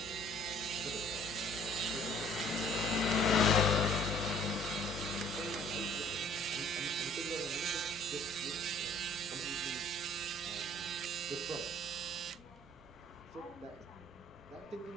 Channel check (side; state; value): right; noise; rumble, 30 dB below the sound